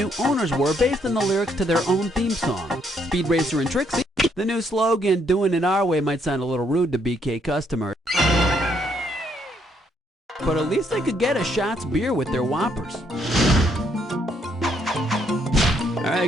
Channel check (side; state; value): both; normal; correlation 0.71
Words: owners were based on the lyrics to their own theme song? Speed Racer and Trixie? The new slogan, doing it our way, might sound a little rude to BK customers. But at least they could get a Shots beer with their Whoppers. Alright.